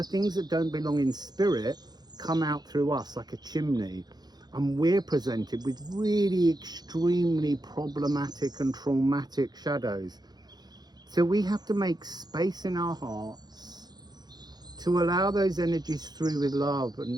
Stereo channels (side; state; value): left; late; 0.20 ms